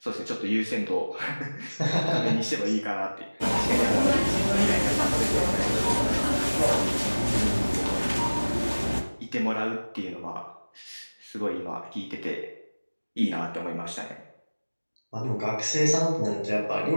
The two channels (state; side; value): inverted; both; correlation -1.00